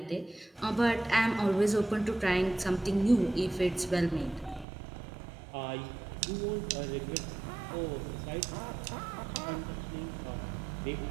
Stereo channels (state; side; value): drops out; left; at 4.7 s